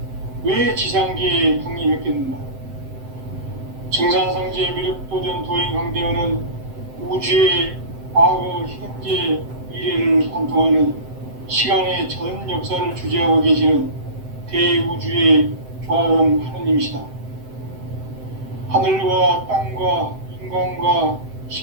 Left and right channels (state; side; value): late; left; 7.8 ms